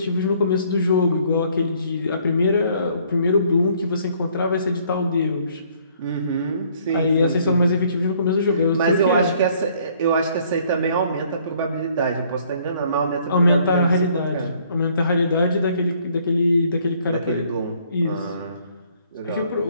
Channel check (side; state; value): both; inverted; correlation -0.62